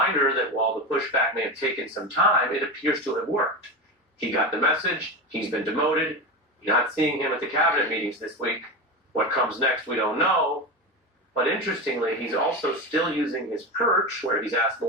that while the pushback may have taken some time, it appears to have worked. He got the message. He's been demoted. You're not seeing him at the cabinet meetings this week. What comes next, we don't know. But interestingly, he's also still using his perch, where he's asked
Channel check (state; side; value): normal; both; correlation 0.20